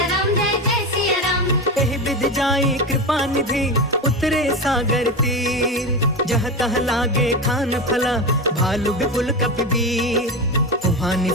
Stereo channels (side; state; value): both; normal; correlation 0.20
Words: राम जय जय सिया राम। एहि विधि जाई कृपा निधि, उतरे सागर तीर। जह तह लागे खान फला, भालु विपुल कपिवीर। वहाँ